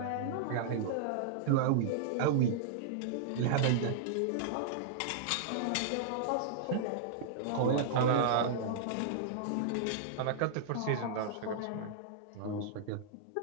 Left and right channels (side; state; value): both; different; correlation -0.02